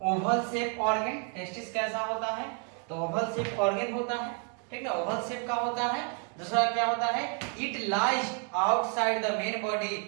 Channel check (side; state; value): left; quieter; 39.5 dB